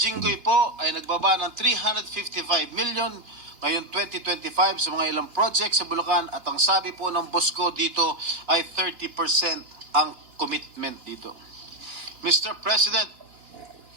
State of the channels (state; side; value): late; left; 3.2 ms